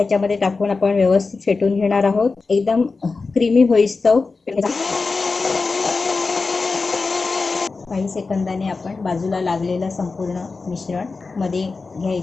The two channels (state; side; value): quieter; right; 4.1 dB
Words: टाकून आपण व्यवस्थित फेटून घेणार आहोत, एकदम क्रीमी होईस्तव। काही सेकंदाने आपण बाजूला लागलेलं संपूर्ण मिश्रण मध्ये